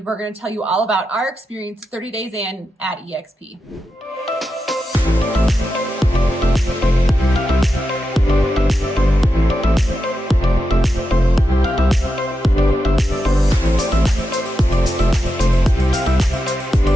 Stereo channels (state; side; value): normal; both; correlation 0.88